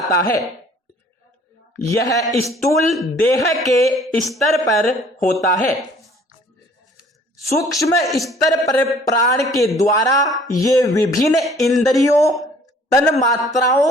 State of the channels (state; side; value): normal; both; correlation 0.55